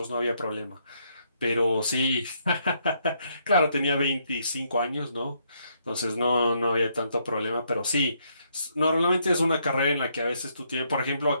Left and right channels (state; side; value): inverted; both; correlation -0.73